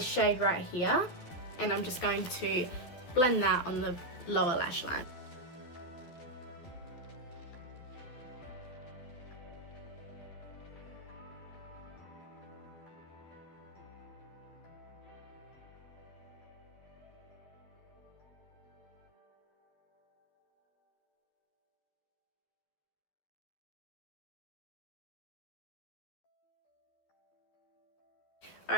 shade right here, and I'm just going to blend that on the lower lash line.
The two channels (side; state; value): right; late; 12 ms